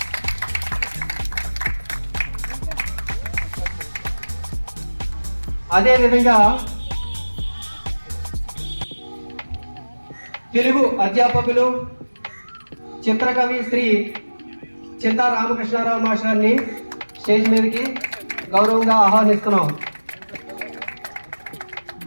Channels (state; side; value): inverted; both; correlation -1.00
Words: అదేవిధంగా తెలుగు అధ్యాపకులు చిత్రకవి శ్రీ చింతా రామకృష్ణారావు మాస్టర్ని స్టేజ్ మీదకి గౌరవంగా ఆహ్వానిస్తున్నాం.